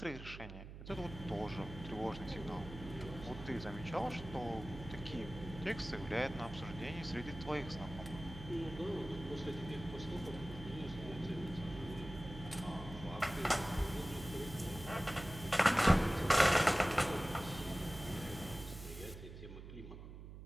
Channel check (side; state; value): right; noise; hum, 12 dB below the sound